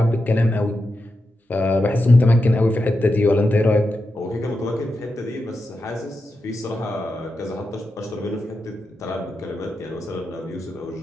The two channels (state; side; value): normal; both; correlation 0.88